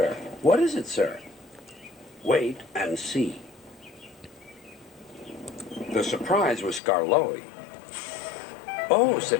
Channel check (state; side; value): drops out; right; at 6.8 s